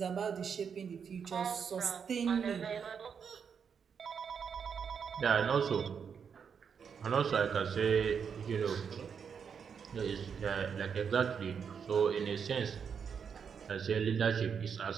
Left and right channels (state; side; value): quieter; left; 6.8 dB